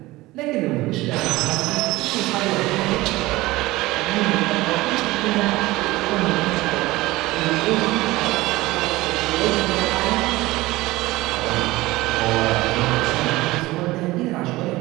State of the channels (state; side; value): quieter; left; 19.2 dB